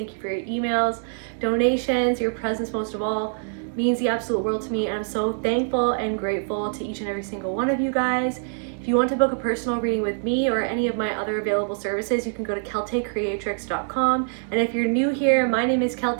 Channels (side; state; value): left; silent; digital silence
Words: you for your emails, donations, your presence most of all means the absolute world to me, and I'm so thankful and grateful to each and every single one of you guys. If you want to book a personal reading with me or any of my other available services, you can go to keltecreatrix.com. And if you're new here, my name is